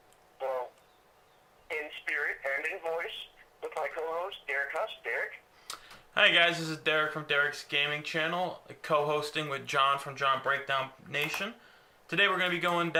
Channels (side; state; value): both; identical; correlation 1.00